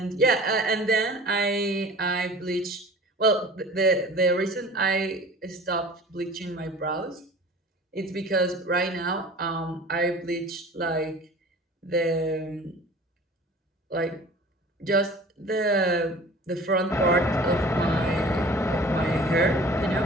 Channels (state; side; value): normal; both; correlation 0.43